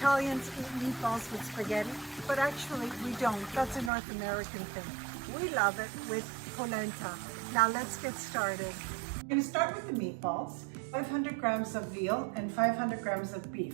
eat meatballs with spaghetti, but actually we don't. That's a North American thing. We love it with polenta. Now let's get started. I'm going to start with the meatballs. 500 grams of veal and 500 grams of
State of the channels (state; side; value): drops out; left; at 3.9 s